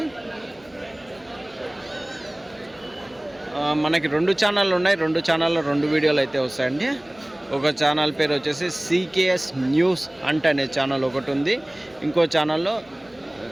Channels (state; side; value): noise; left; hum, 29 dB below the sound